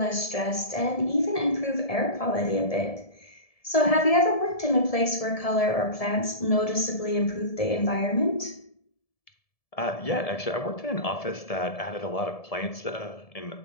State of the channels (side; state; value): right; late; 1.7 ms